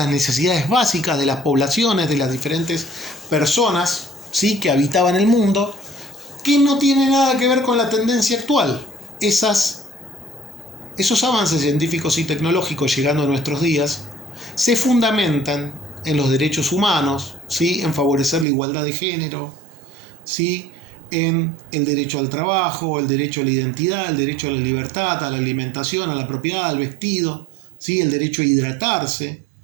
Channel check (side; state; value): left; drops out; at 18.4 s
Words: necesidades básicas de las poblaciones, de las diferentes personas, ¿sí?, que habitaban el mundo, que no tiene nada que ver con la tendencia actual. Esos avances científicos y tecnológicos llegando a nuestros días se fundamentan en los derechos humanos, ¿sí?, en favorecer la igualdad de género, ¿sí?, en el derecho al trabajo, el derecho a la identidad, el derecho a la libertad, a la alimentación, a la propiedad, al vestido, ¿sí?, el derecho a hidratarse,